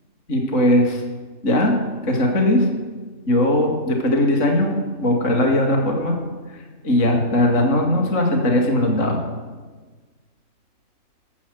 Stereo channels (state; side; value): late; right; 3.6 ms